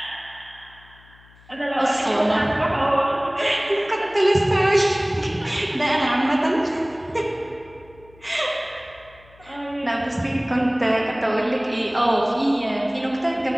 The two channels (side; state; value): left; noise; hum, 26 dB below the sound